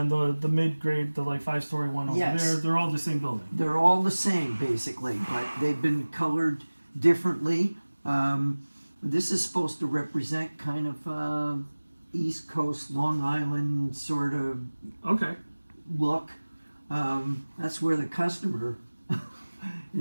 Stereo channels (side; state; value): both; inverted; correlation -1.00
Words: the mid-grade, the 5-story one over Yes. there, they're all the same building. They're all the same basically, but they've been colored differently. This is supposed to represent kind of East Coast, Long Island sort of Okay. look. That's where the customer